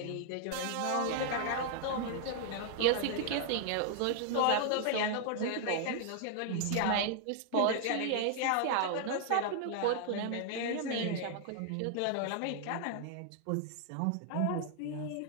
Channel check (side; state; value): both; different; correlation 0.00